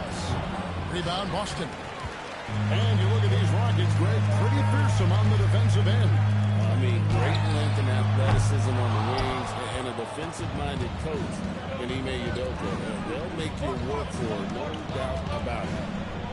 Rebound, Boston. And you look at these Rockets, Greg, pretty fearsome on the defensive end. I mean, great length and athleticism on the wings, and a defensive-minded coach in Ime Udoka. They'll make you work for it, no doubt about it.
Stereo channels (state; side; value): identical; both; correlation 1.00